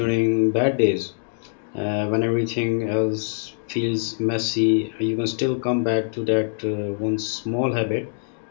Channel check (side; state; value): right; silent; digital silence